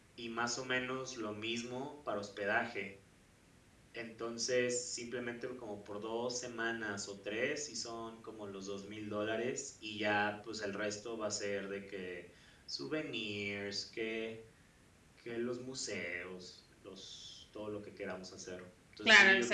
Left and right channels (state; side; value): identical; both; correlation 1.00